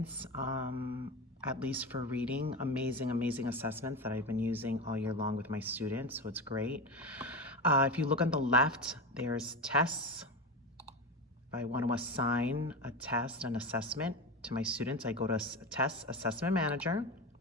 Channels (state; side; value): normal; both; correlation 0.21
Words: at least for reading, amazing assessments that I've been using all year long with my students, so it's great. If you look on the left, there's tests. If I want to assign a test, an assessment to my students, I go to Test Assessment Manager.